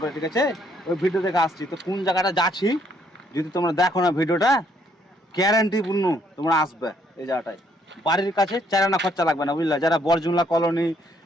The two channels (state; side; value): normal; both; correlation 0.69